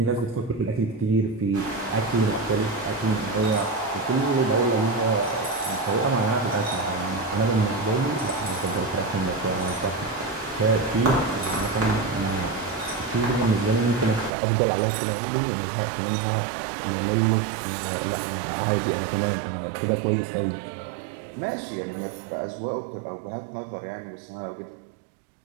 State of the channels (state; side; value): drops out; left; at 14.3 s